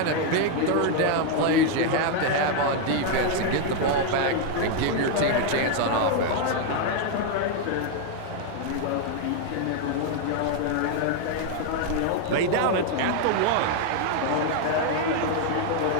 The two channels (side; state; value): both; different; correlation 0.00